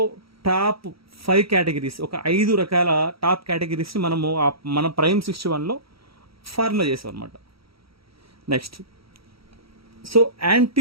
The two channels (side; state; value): left; late; 0.75 ms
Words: టాప్ 5 కేటగిరీస్, ఒక 5 రకాల టాప్ కేటగిరీస్ని మనము మన ప్రైమ్ 61లో ఫార్ములా చేసాం అనమాట. Next, so